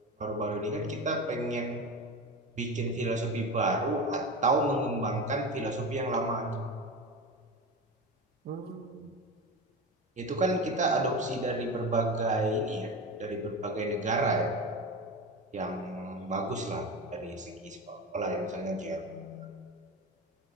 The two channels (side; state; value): both; normal; correlation 0.25